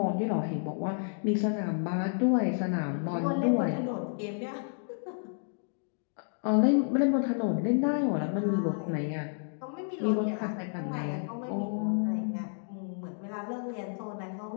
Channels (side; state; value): right; silent; digital silence